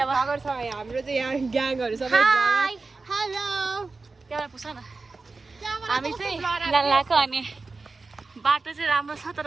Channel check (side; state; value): left; quieter; 3.9 dB